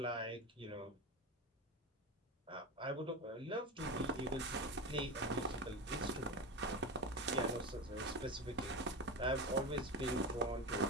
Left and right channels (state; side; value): normal; both; correlation 0.18